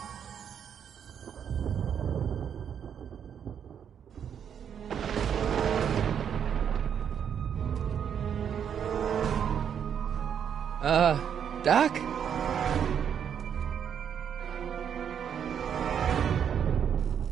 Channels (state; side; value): quieter; left; 8.2 dB